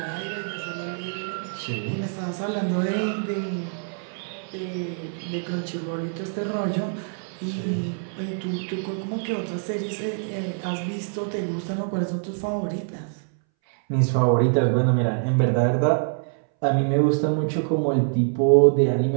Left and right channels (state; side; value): silent; left; 62 dB below the other